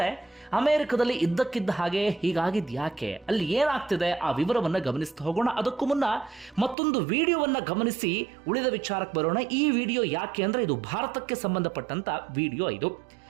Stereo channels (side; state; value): left; drops out; at 6.8 s